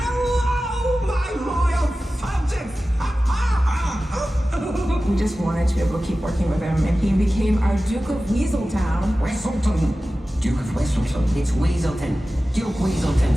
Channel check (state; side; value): normal; both; correlation 0.95